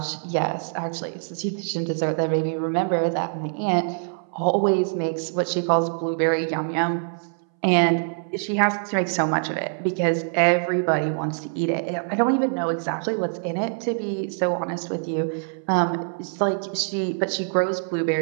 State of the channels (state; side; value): silent; left; 62 dB below the other